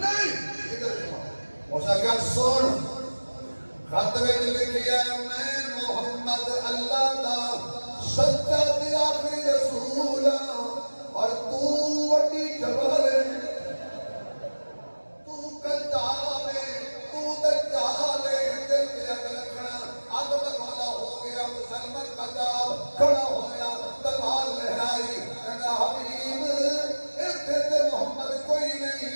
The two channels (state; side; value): inverted; both; correlation -1.00